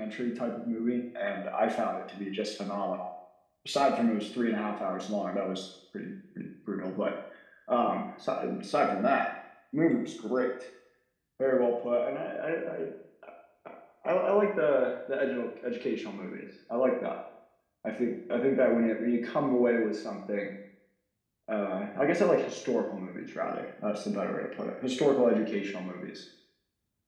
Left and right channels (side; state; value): both; identical; correlation 1.00